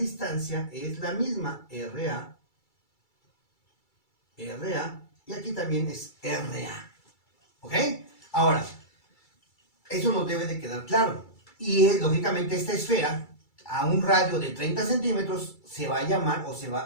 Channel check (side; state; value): right; late; 2.3 ms